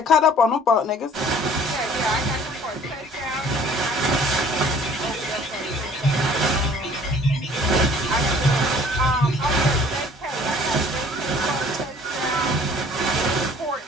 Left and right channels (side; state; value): both; normal; correlation 0.53